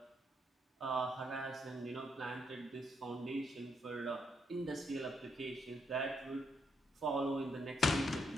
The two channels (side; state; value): both; normal; correlation 0.77